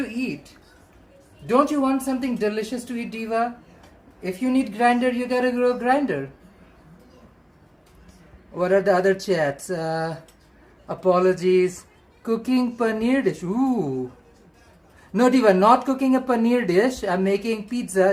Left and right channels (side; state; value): both; identical; correlation 1.00